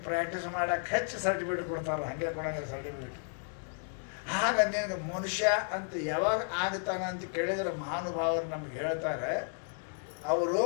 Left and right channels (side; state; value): right; silent; 56 dB below the other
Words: ಪ್ರಾಕ್ಟೀಸ್ ಮಾಡಕ್ಕೆ ಹೆಚ್ಚು ಸರ್ಟಿಫಿಕೇಟ್ ಕೊಡ್ತಾರಲ್ಲ, ಹಾಗೆ ಕೊಡಂಗಿಲ್ಲ ಸರ್ಟಿಫಿಕೇಟ್. ಆಗ ನಿನಗೆ ಮನುಷ್ಯ ಅಂತ ಯಾವಾಗ ಆಗ್ತಾನ ಅಂತ ಕೇಳಿದ್ರೆ ಮಹಾನುಭಾವರು ನಮ್ಗೆ ಹೇಳ್ತಾರೆ, ಅವರು